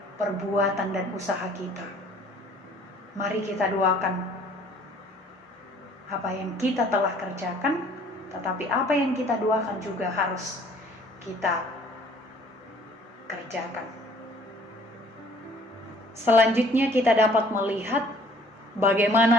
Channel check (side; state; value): both; normal; correlation 0.55